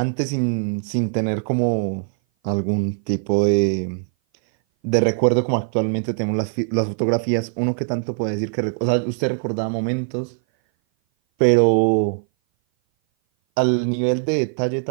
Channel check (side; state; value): left; silent; 58 dB below the other